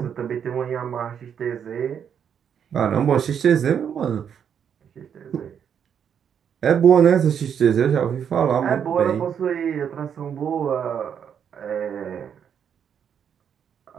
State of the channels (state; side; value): quieter; left; 8.1 dB